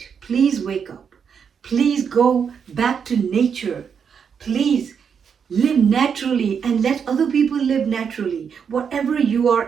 Please wake up. Please go back to nature. Please live naturally and let other people live naturally. Whatever you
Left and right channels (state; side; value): quieter; left; 6.9 dB